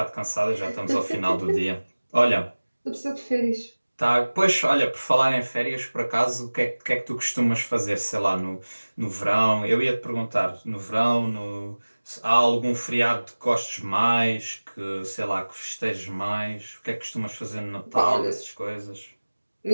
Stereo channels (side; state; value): both; inverted; correlation -1.00